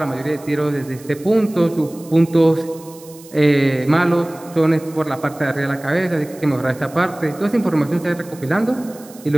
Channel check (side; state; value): right; noise; hiss, 22 dB below the sound